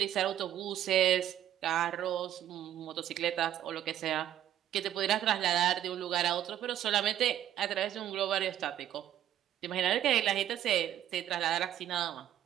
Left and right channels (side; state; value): left; quieter; 11.5 dB